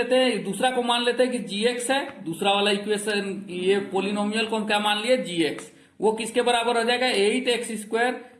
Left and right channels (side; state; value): both; identical; correlation 1.00